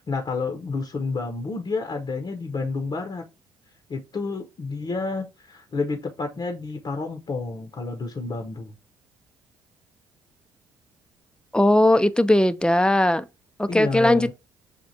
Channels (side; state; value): both; normal; correlation 0.92